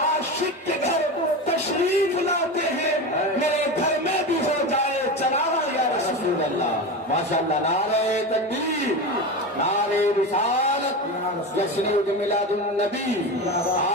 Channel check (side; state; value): both; normal; correlation 0.23